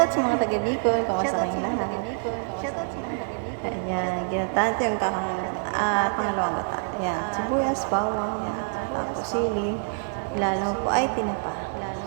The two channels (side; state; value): left; silent; 61 dB below the other